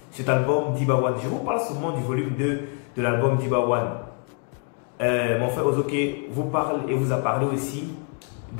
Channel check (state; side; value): quieter; right; 39.7 dB